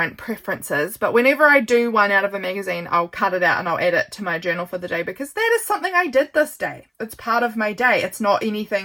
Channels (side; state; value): both; identical; correlation 1.00